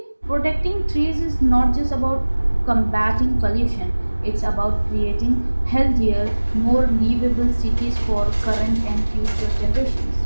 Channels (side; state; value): both; inverted; correlation -1.00